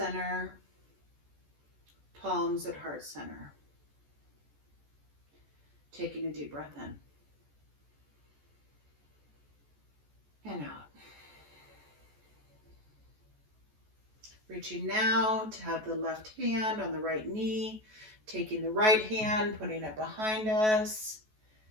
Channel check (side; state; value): left; late; 14 ms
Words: palms at heart center. Taking a deep breath in and out. Reaching now to have the left hand on the right knee, taking the right hand, putting it behind us,